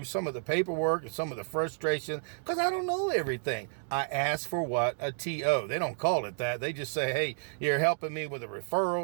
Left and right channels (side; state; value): left; silent; 57 dB below the other